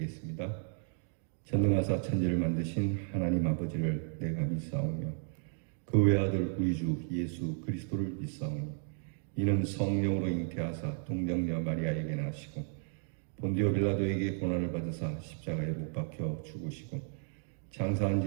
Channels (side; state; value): left; silent; 55 dB below the other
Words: 전능하사 천지를 만드신 하나님 아버지를 내가 믿사오며 그 외아들 우리 주 예수 그리스도를 믿사오니 이는 성령으로 잉태하사 동정녀 마리아에게 나시고 본디오 빌라도에게 고난을 받으사 십자가에 못 박혀 죽으시고 장사한